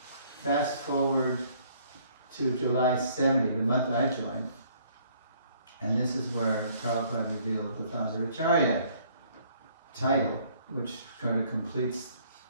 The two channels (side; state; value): both; inverted; correlation -0.61